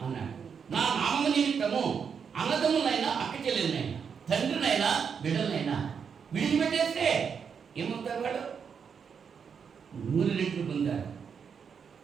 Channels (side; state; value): left; quieter; 6.6 dB